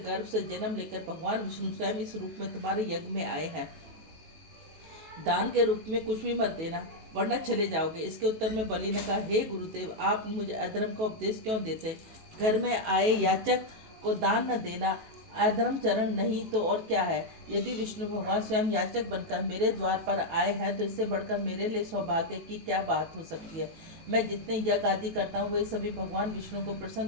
से जन्म लेकर भगवान विष्णु स्वयं इस रूप में तुम्हारे यज्ञ में आए हैं। दान के रूप में कुछ भी मत देना, वरना चले जाओगे। इसके उत्तर में बलि ने कहा, हे गुरुदेव, आप मुझे अधर्म का उपदेश क्यों देते। घर में आए याचक को दान न देना अधर्म चरण नहीं तो और क्या है। यदि विष्णु भगवान स्वयं याचक बनकर मेरे द्वार पर आए हैं तो इससे बढ़कर मेरे लिए सौभाग्य की क्या बात हो सकती है। मैं जितने यज्ञ आदि करता हूँ वे सभी भगवान विष्णु को प्रसन्न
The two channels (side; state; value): left; late; 19 ms